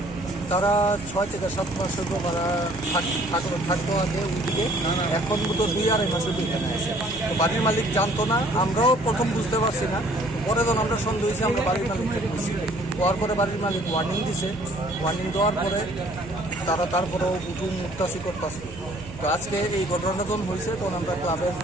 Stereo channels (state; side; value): noise; right; hum, 15 dB below the sound